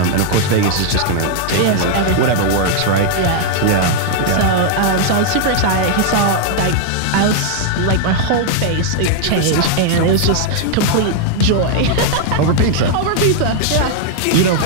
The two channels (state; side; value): different; both; correlation -0.01